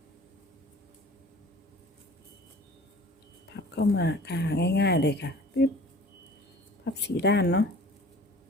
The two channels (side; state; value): both; normal; correlation 0.46